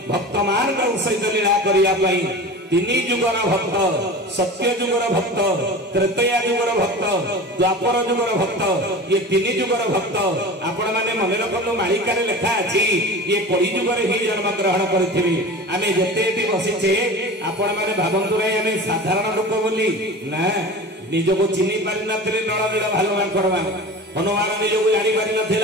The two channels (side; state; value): both; normal; correlation 0.34